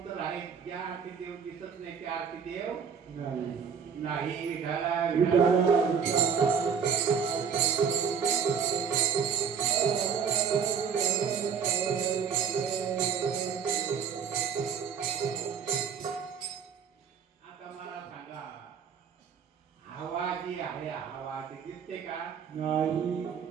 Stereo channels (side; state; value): left; quieter; 6.7 dB